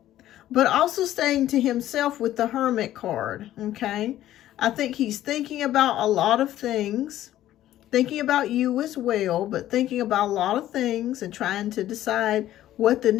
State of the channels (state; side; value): quieter; right; 13.3 dB